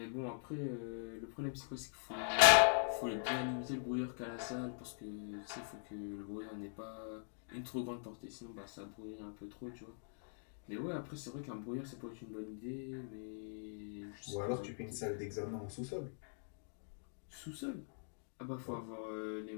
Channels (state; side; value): silent; right; digital silence